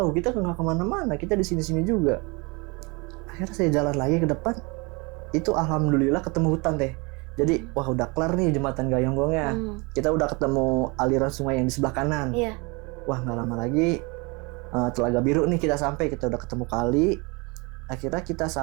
kita nggak kemana-mana, kita di sini-sini juga. Akhirnya saya jalan lagi ke depan, itu alhamdulillah ketemu hutan teh. Jadi wah udah kelar nih jembatan Gayonggongnya. Kita udah ketemu aliran sungai yang di sebelah kanan. Wah nggak lama lagi Telaga Biru nih kita sampai, kita udah ketemu kali. Akhirnya kita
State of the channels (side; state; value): left; quieter; 28.4 dB